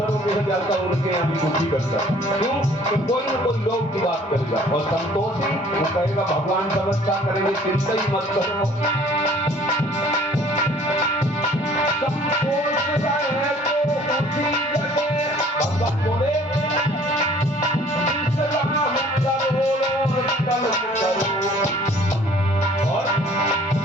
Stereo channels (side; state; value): both; normal; correlation 0.54